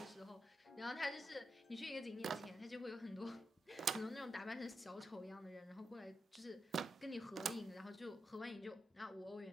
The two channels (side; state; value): both; normal; correlation 0.87